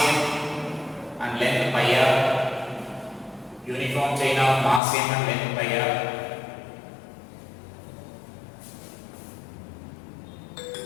and length pi r, uniform chain of mass m and length pi r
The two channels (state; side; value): drops out; right; at 4.8 s